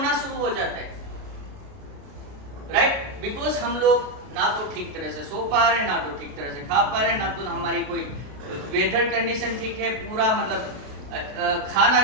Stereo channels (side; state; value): left; late; 32 ms